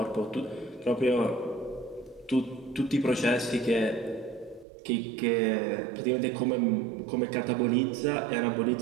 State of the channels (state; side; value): drops out; left; at 4.7 s